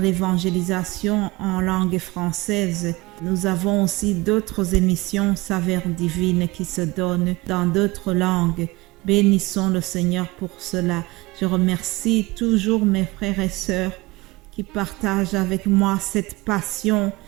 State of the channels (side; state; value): left; quieter; 22.5 dB